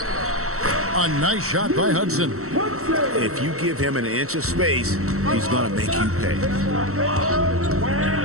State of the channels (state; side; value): late; left; 0.64 ms